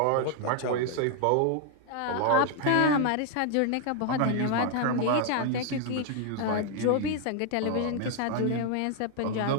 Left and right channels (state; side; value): different; both; correlation 0.00